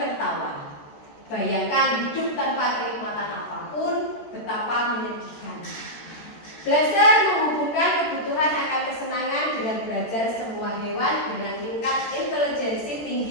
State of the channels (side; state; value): right; late; 13 ms